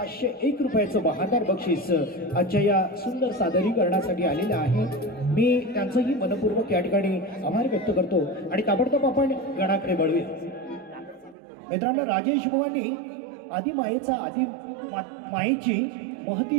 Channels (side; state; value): left; drops out; at 11.4 s